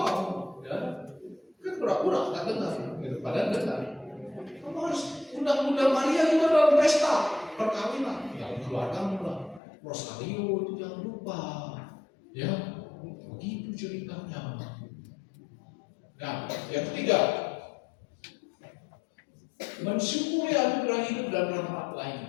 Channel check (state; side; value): drops out; right; at 9.6 s